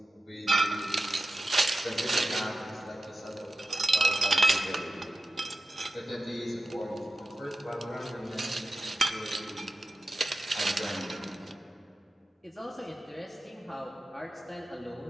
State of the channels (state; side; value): normal; both; correlation 0.92